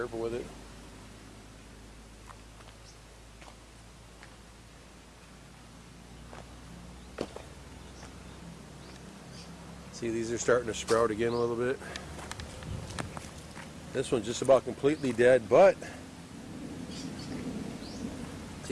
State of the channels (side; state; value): both; identical; correlation 1.00